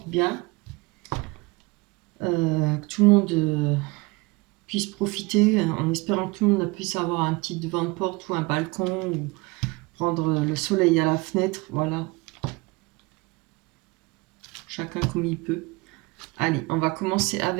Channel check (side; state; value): left; quieter; 24.4 dB